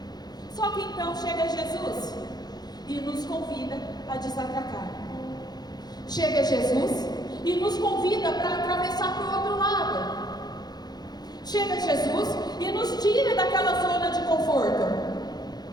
Só que então chega Jesus e nos convida a desatracar. Chega Jesus e nos convida para atravessar para o outro lado. Chega Jesus e nos tira daquela zona de conforto.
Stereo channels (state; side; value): late; right; 0.19 ms